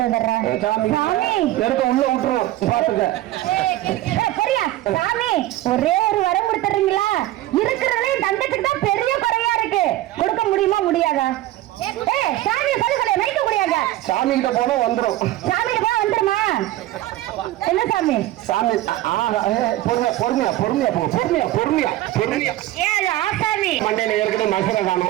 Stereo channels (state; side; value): quieter; left; 15.5 dB